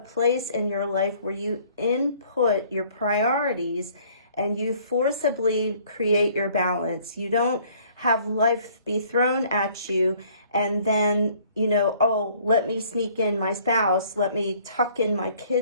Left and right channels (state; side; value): inverted; both; correlation -0.58